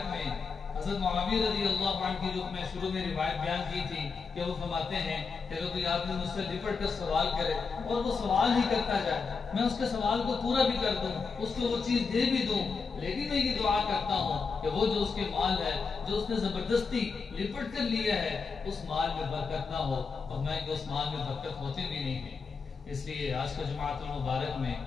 میں حضرت معاویہ رضی اللہ عنہ کی جو میں شروع میں روایت بیان کی تھی کہ وہ فرماتے ہیں کہ اگر کوئی آدمی مجھ سے لپٹ کر سوال کرے اور وہ سوال ہی کرتا جائے، میں اس کے سوال کو پورا بھی کر دوں، اس کو وہ چیز دے بھی دوں، لیکن میں یہ دعا کرتا ہوں کہ وہ جو اس کے مال ہے جو اس نے زبردستی لپٹ کر لیا ہے اس مال میں برکت نہ ہو، اور میں کہ اس مال میں برکت ہوتی بھی نہیں ہے۔ اس لیے آج کا جماعت المبارک میں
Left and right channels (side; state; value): right; quieter; 5.0 dB